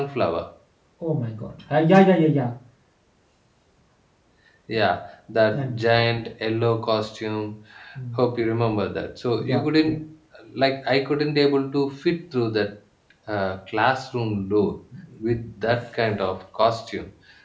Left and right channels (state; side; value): identical; both; correlation 1.00